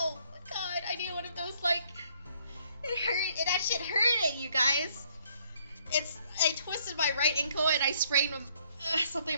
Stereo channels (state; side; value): inverted; both; correlation -0.66